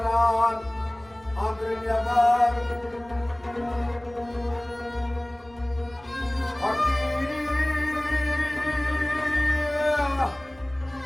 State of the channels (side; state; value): right; noise; rumble, 25 dB below the sound